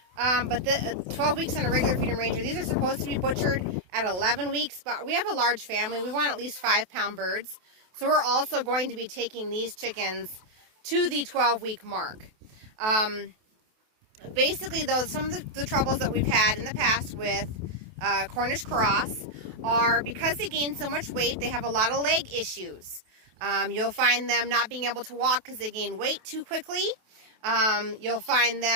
but the 12 weeks on a regular Freedom Ranger. These are supposed to be butchered at 11 weeks, but we have a large family. We want at least 5-pound birds, so we're also going to be taking these chickens to the 12-week mark. Basically, though, some of the troubles that we've had in the past with Cornish Cross are because they gain so much weight, they have a lot of leg issues. You'll find them not being able to walk because they gain weight too quickly. You'll find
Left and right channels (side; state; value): left; late; 28 ms